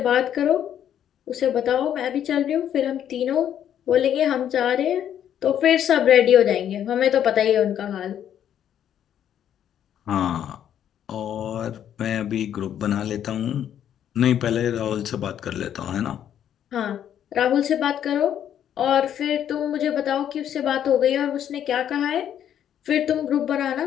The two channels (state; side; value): quieter; right; 10.0 dB